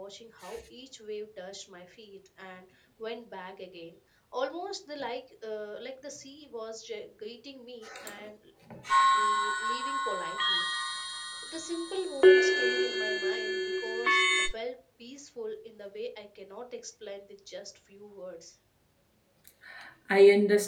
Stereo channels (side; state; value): both; identical; correlation 1.00